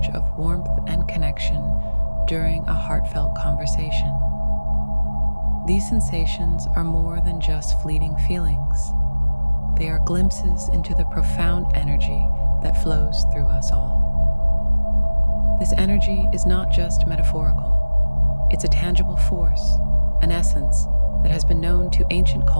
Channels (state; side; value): inverted; both; correlation -1.00